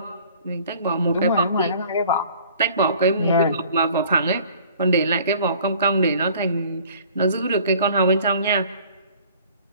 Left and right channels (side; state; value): both; inverted; correlation -0.52